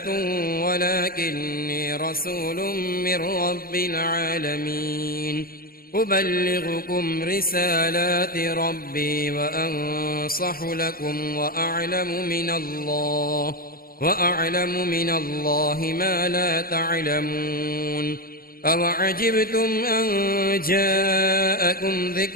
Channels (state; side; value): late; right; 0.43 ms